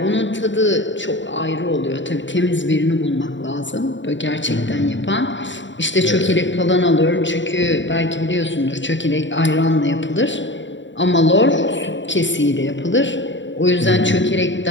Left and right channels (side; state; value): right; late; 0.54 ms